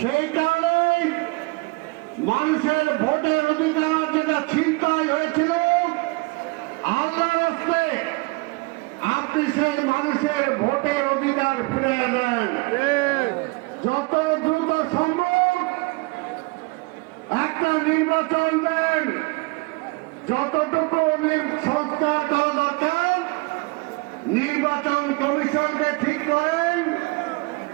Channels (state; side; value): quieter; left; 26.4 dB